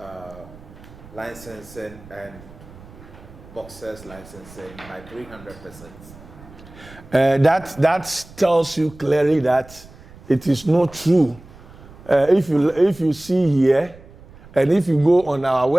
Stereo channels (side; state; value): right; noise; rumble, 20 dB below the sound